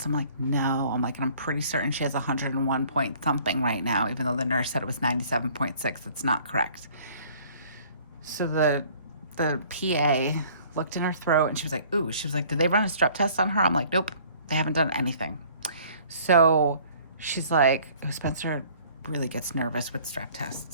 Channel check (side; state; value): both; inverted; correlation -0.54